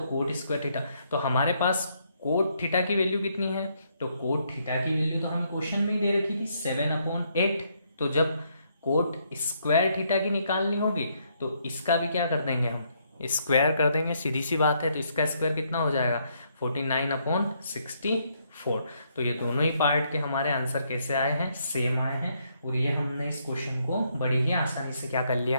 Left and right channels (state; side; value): inverted; both; correlation -0.73